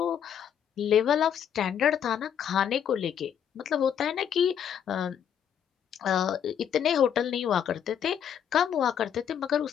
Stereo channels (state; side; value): quieter; right; 8.7 dB